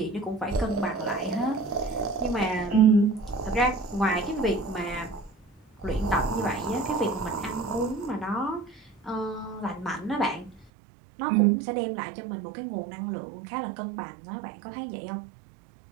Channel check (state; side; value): drops out; left; at 10.7 s